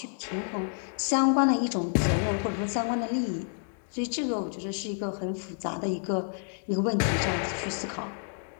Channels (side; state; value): right; silent; 58 dB below the other